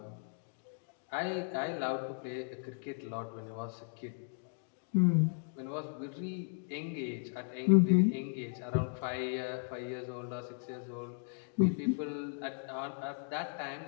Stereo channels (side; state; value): right; silent; 54 dB below the other